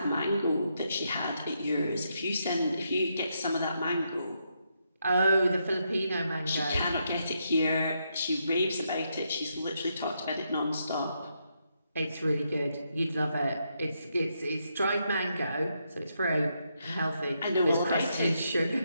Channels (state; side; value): inverted; both; correlation -0.80